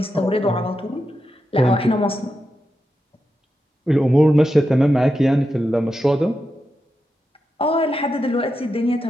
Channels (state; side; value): normal; both; correlation 0.88